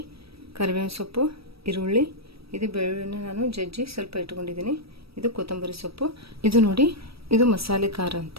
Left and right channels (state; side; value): late; left; 0.77 ms